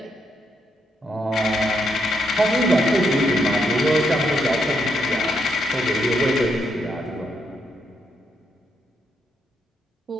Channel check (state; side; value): normal; both; correlation 0.78